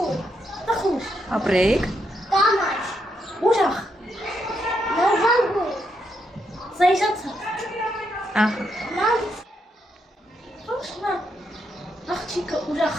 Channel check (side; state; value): both; normal; correlation 0.79